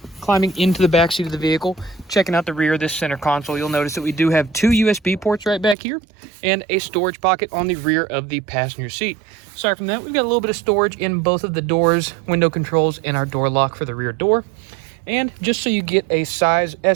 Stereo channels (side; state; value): left; drops out; at 5.8 s